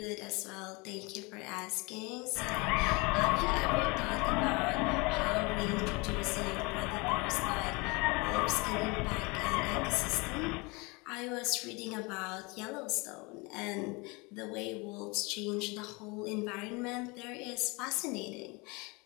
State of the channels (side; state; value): right; quieter; 27.1 dB